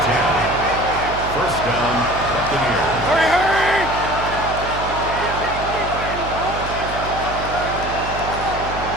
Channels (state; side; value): noise; right; hum, 9 dB below the sound